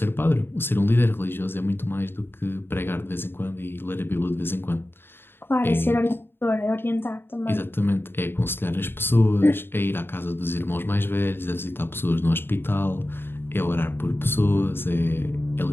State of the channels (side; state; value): right; late; 0.11 ms